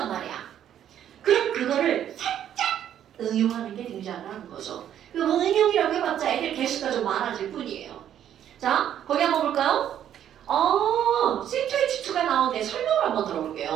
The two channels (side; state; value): left; quieter; 10.3 dB